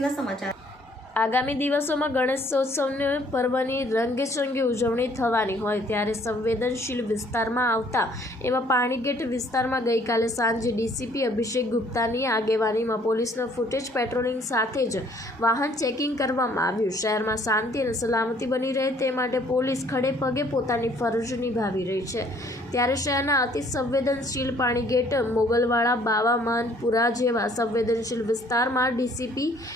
સમાચાર. આગામી દિવસોમાં ગણેશોત્સવની પર્વની રંગેચંગે ઉજવણી થવાની હોય ત્યારે સંવેદનશીલ વિસ્તારમાં આવતા એવા પાણીગેટ વિસ્તારમાં ગઈકાલે સાંજે ડીસીપી અભિષેક ગુપ્તાની આગેવાનીમાં પોલીસનો ફૂટેજ પેટ્રોલિંગ સાથે જ વાહન ચેકિંગ કરવામાં આવ્યું. શહેરમાં શાંતિ અને સલામતી બની રહે તે માટે પોલીસ ખડે પગે પોતાની ફરજ નિભાવી રહી છે. ત્યારે શહેરના અતિ સંવેદનશીલ પાણીગેટ, મોગલવાડા, બાવા માનપુરા જેવા સંવેદનશીલ વિસ્તારમાં ડીસીપી,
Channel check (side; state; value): both; normal; correlation 0.61